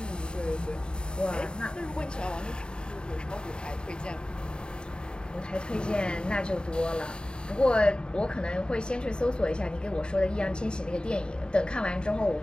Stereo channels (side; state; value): right; late; 0.049 ms